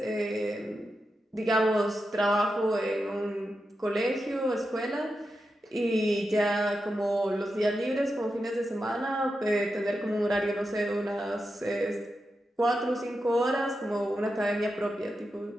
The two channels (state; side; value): normal; both; correlation 0.89